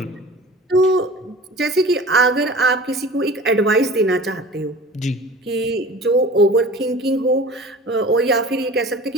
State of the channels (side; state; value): both; normal; correlation 0.41